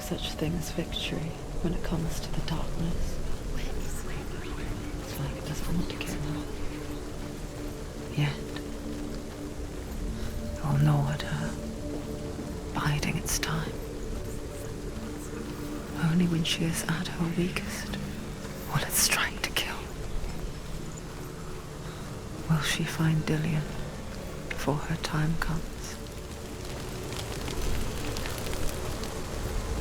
thing as victory when it comes to the darkness. It's like it doesn't want to give up. Yet, it will gnaw at her, biding its time. Only when she is at her weakest will it strike to kill. Will she find Dillion before her time comes?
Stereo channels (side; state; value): both; identical; correlation 1.00